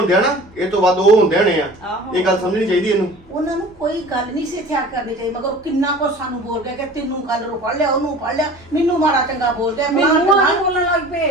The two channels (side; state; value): both; normal; correlation 0.42